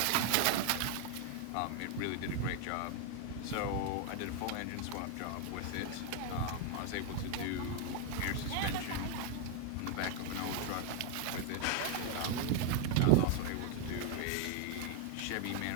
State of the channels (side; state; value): both; different; correlation 0.01